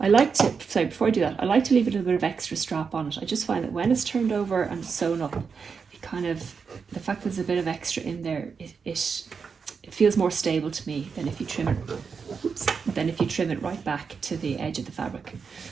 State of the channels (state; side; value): quieter; left; 5.7 dB